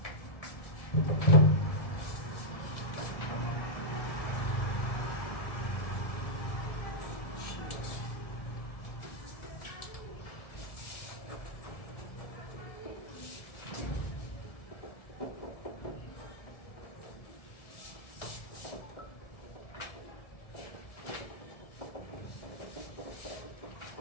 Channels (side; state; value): right; late; 1.7 ms